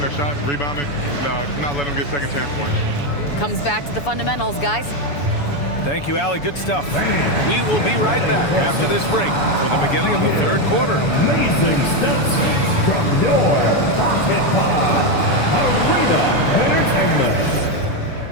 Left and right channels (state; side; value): late; right; 7.0 ms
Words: their shots, rebounding, not letting them get second chance points. Comes back to the fundamentals, guys. Thank you, Allie. Good stuff. We will be right back after this break for the beginning of the third quarter. Amazing steps from your pocket pod. Arena Entertainment.